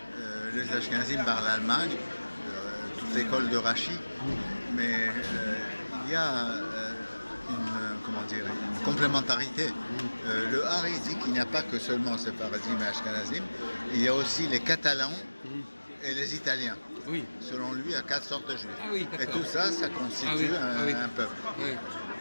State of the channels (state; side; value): inverted; both; correlation -1.00